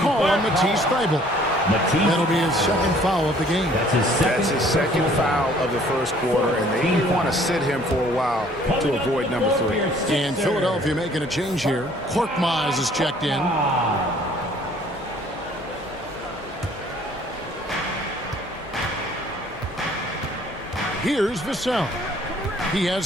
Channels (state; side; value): normal; both; correlation 0.57